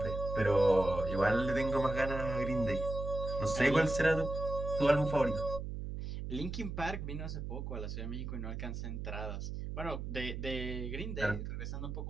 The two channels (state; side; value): noise; right; hum, 5 dB below the sound